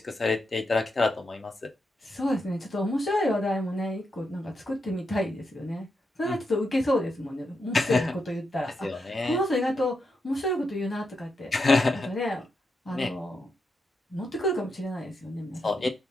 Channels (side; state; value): both; normal; correlation 0.84